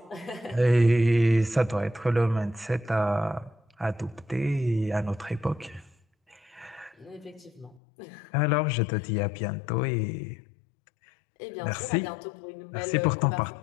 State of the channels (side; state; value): right; drops out; at 7.8 s